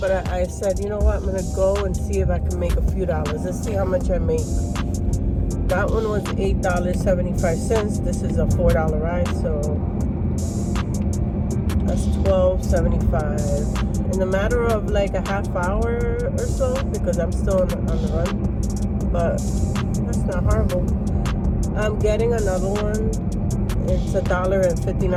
I said, you know what, I'm going to go and see if I can make a few dollars. Let's see how much I make. That one was $8.75. This is a $4 ride, so that's $12.75. In a matter of like a half hour or so, because I'm still on the run, but that's not horrible. I'm getting another one. It's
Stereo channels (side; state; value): both; identical; correlation 1.00